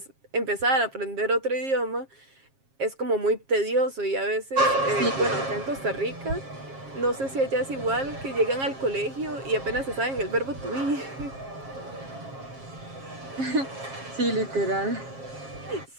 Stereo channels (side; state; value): left; late; 7.4 ms